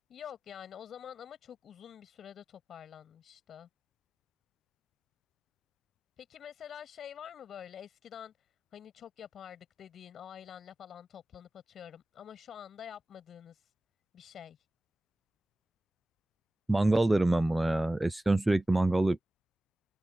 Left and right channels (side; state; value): both; normal; correlation 0.97